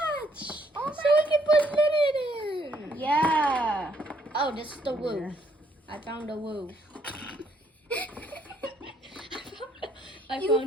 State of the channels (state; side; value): normal; both; correlation 0.69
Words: Oh So we can put Lynette in. Yeah. Oh, this is the woo. I found the woo. I You